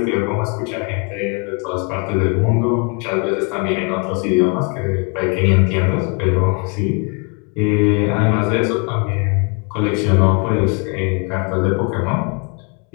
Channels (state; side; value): quieter; right; 33.6 dB